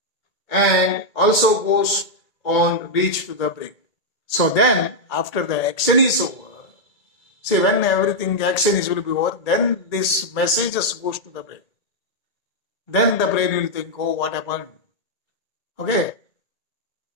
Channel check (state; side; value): late; right; 1.8 ms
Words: and also goes on reach to the brain. So then, after the action is over, see when everything action is will be over, then this message just goes to the brain. Then the brain will think, oh, what happened? Okay.